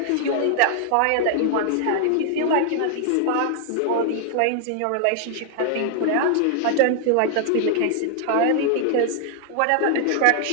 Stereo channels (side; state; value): both; different; correlation 0.00